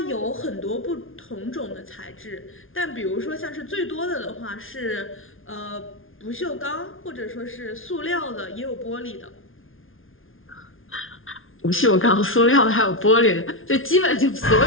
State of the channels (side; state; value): right; late; 0.59 ms